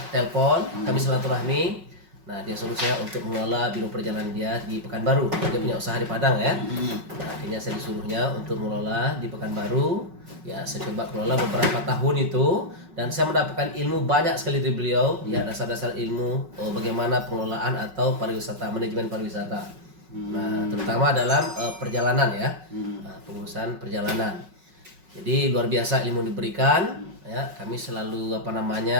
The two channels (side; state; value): left; late; 5.4 ms